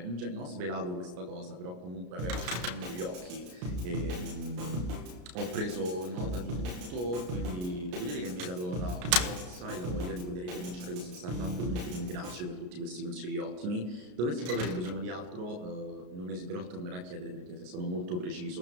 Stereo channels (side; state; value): left; late; 33 ms